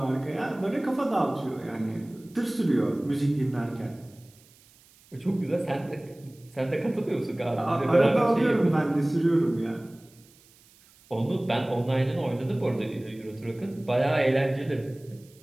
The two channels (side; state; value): right; noise; hiss, 28 dB below the sound